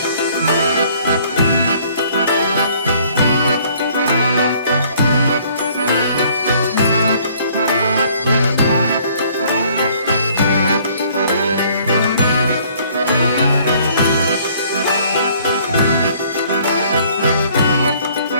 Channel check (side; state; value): both; inverted; correlation -0.59